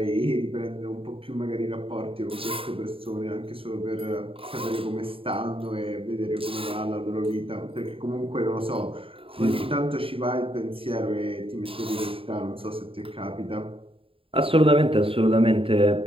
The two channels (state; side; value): late; left; 0.27 ms